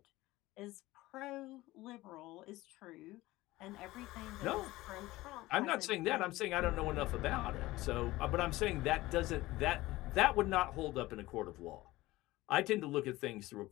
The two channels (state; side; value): quieter; right; 18.4 dB